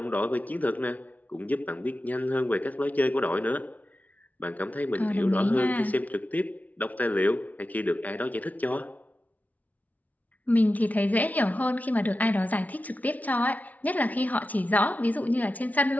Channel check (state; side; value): late; right; 0.073 ms